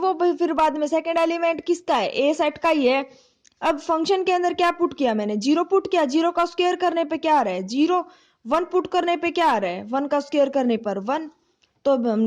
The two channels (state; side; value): identical; both; correlation 1.00